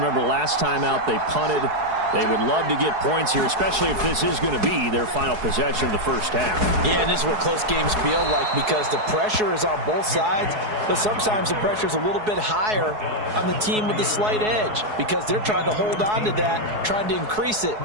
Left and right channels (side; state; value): left; late; 4.7 ms